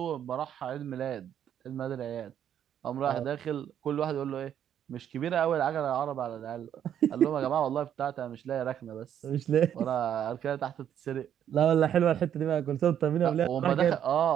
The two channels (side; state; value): left; quieter; 9.7 dB